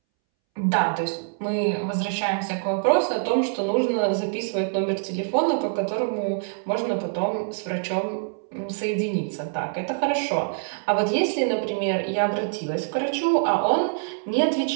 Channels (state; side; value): silent; left; 62 dB below the other